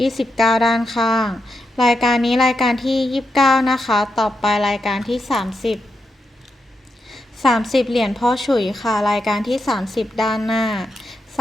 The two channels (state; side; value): normal; both; correlation 0.85